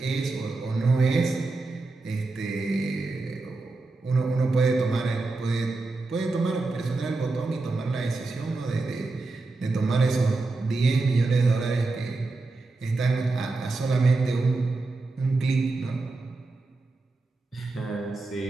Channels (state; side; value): quieter; left; 3.5 dB